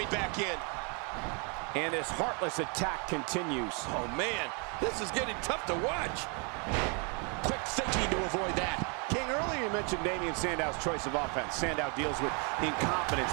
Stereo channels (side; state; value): left; quieter; 35.2 dB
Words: back in. And this heartless attack continues. Oh, man, this is getting tough to watch. Quick thinking to avoid that. King, earlier you mentioned Damien Sandow's choice of offense. Sandow deals with incompetence